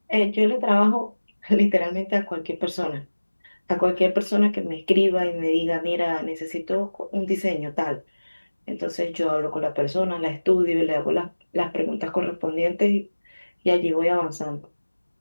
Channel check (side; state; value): both; inverted; correlation -1.00